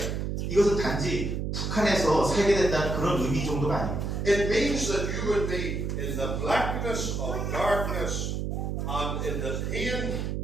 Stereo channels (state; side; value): noise; right; hum, 2 dB below the sound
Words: 이것은 단지 북한에서 살게 된다는 그런 의미 정도가 아닙니다. It means that you would be in the blackness of darkness and in the pain